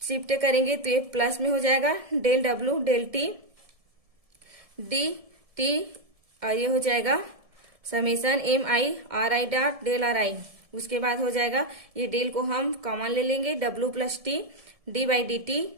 शिफ्ट करेंगे तो ये प्लस में हो जाएगा del W del T D T और ये हो जाएगा summation M I R I dot del R I. उसके बाद हो जाएगा ये डेल को हम कॉमन ले लेंगे W plus T D by D T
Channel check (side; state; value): left; late; 1.7 ms